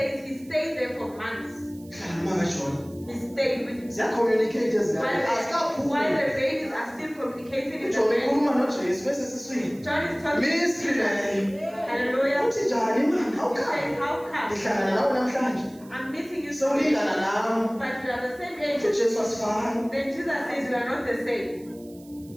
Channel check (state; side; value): noise; right; hiss, 25 dB below the sound